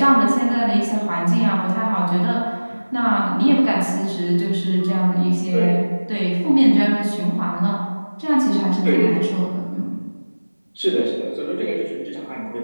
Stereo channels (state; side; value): inverted; both; correlation -1.00